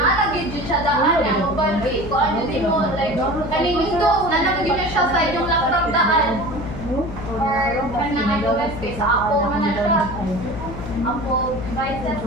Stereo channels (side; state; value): left; noise; hum, 9 dB below the sound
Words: jud siya daan ang uban kay kuan jud mo like kaning Windows nalagid na siya sa inyong laptop daan. Or kanang iOS kay sa Apple man na siya. Apple devices